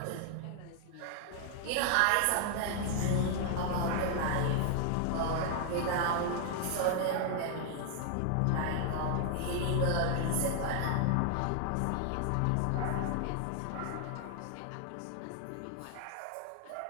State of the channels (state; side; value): different; both; correlation 0.00